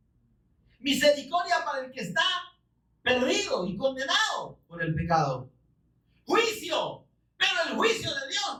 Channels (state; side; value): identical; both; correlation 1.00